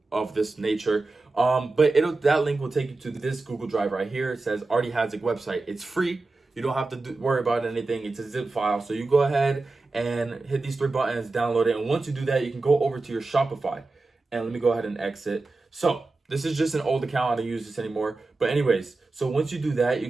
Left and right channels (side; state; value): left; quieter; 3.4 dB